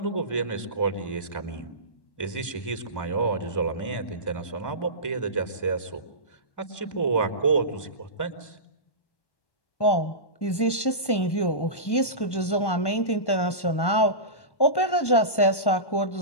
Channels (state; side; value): late; right; 1.1 ms